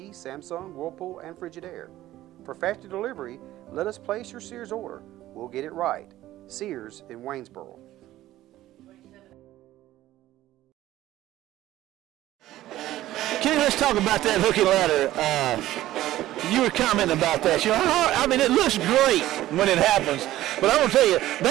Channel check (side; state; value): left; quieter; 14.8 dB